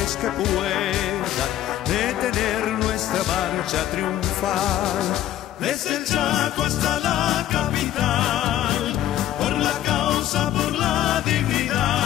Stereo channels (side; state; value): right; quieter; 12.5 dB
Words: que puedan detener nuestra marcha triunfal. Desde el Chaco hasta la capital, por la causa, por la